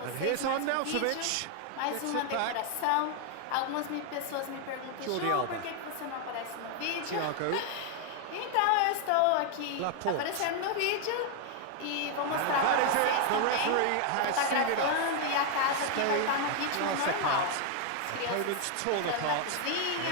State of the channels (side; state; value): both; different; correlation 0.00